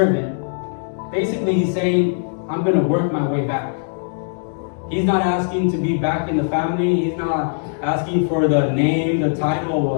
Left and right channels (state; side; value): silent; right; digital silence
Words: Basically, he's saying, I'm going to work my way back. He's not asking to be back in the family. He's not asking for the name, the title